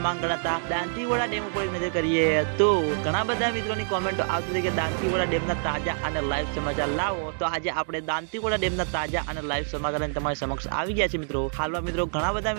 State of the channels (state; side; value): silent; left; digital silence